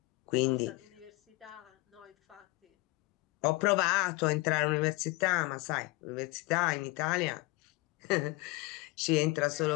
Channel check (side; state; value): right; quieter; 23.0 dB